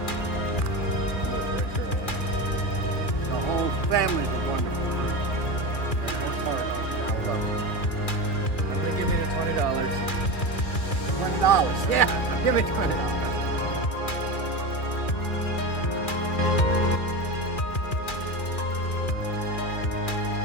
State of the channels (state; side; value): late; right; 2.4 ms